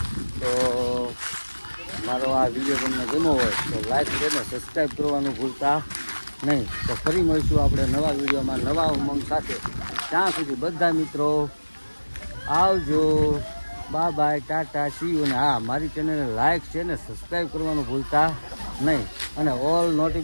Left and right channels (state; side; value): inverted; both; correlation -1.00